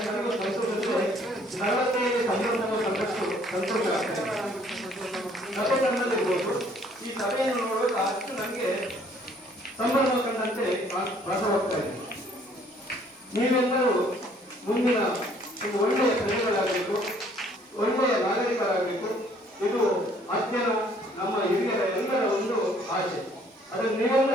ಸಂತೋಷವಿದೆ. ನಲವತ್ತೈದು ಸಂದರ್ಭಗಳು ಸಂತೋಷ ಆಗ್ತದೆ. ಸಭೆ ನಡೆದಿರ್ಬೋದು. ಈ ಸಭೆಯನ್ನು ನೋಡುವಾಗ ಅಷ್ಟು ನನಗೆ ಸಂಭ್ರಮ ಕಂಡಂತೆ ಭಾಸವಾಗ್ತಾ ಇದೆ. ನೀವೆಲ್ಲರೂ ಮುಂದಿನ ಒಂದು ಒಳ್ಳೆಯ ಪ್ರಜೆಗಳಾಗಬೇಕು, ಒಳ್ಳೆಯ ನಾಗರಿಕರಾಗಬೇಕು. ಇದು ಅಧ್ಯಯನ ನಮ್ಮ ಹಿರಿಯರ ಎಲ್ಲರ ಒಂದು ಆಶೆ. ಅದನ್ನು ನೀವೆಲ್ಲ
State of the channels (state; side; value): normal; both; correlation 0.61